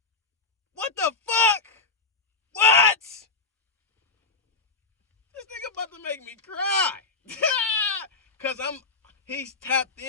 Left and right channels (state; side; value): quieter; right; 4.0 dB